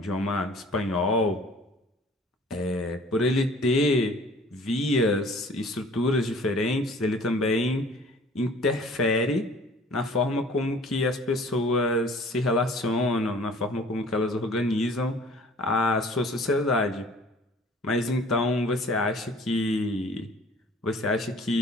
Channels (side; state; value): both; normal; correlation 0.50